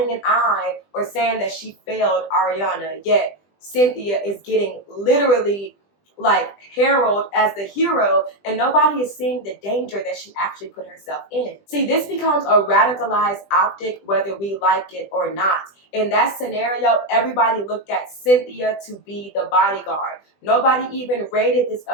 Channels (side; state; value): right; late; 20 ms